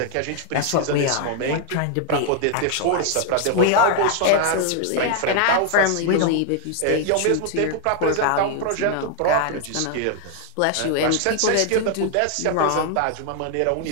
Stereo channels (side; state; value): both; different; correlation 0.00